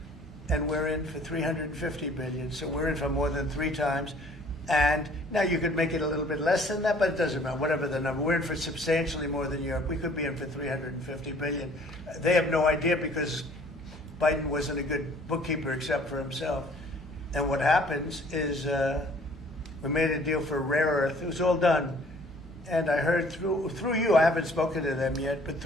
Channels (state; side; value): normal; both; correlation 0.56